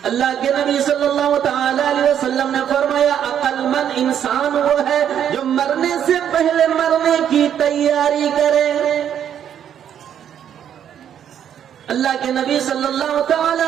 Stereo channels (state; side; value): quieter; left; 9.4 dB